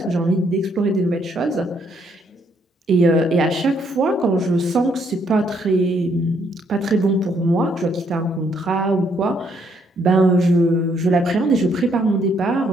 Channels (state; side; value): normal; both; correlation 0.71